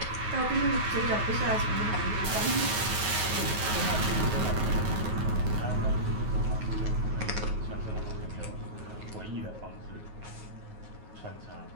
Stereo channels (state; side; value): late; left; 9.4 ms